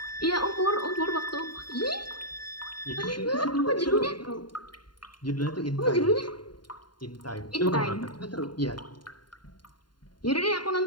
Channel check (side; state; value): right; late; 0.71 ms